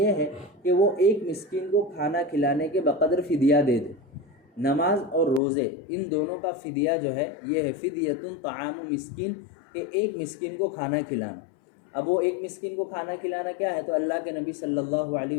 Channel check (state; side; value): drops out; right; at 5.4 s